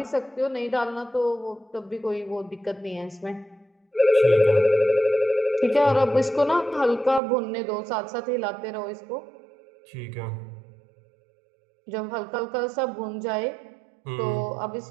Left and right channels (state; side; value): drops out; left; at 7.2 s